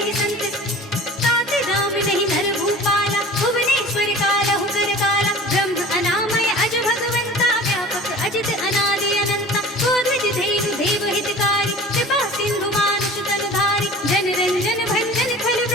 संत तात नाम नहीं नर भूपाला भुवनेश्वर कालहु कर काला ब्रह्म अनामय अज भगवंता व्यापक अजित अनादि अनंता गोद्विज धेनु देव हितकारी कृपा सिंधु मानुष तनुधारी जन रंजन भंजन खल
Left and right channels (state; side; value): normal; both; correlation 0.41